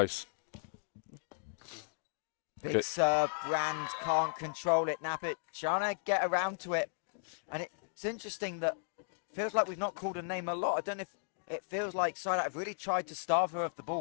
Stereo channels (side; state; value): right; silent; digital silence